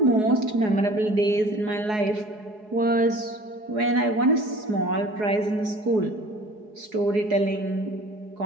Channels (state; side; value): late; left; 4.8 ms